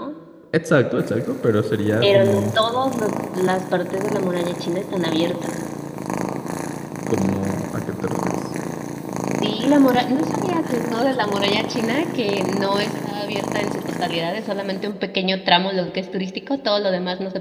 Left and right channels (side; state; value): both; identical; correlation 1.00